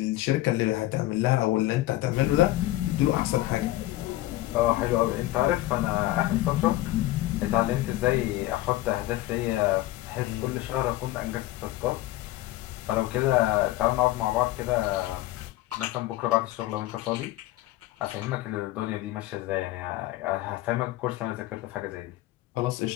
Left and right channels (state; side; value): quieter; right; 16.7 dB